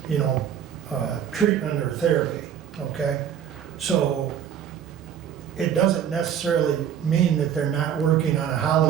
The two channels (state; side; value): quieter; left; 9.2 dB